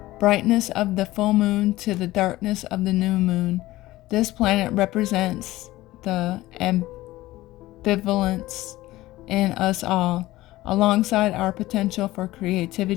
brightness of the full moon to the darkness of the new moon. This planet represents the ambivalence in us all, alongside our potential for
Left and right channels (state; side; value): quieter; right; 17.2 dB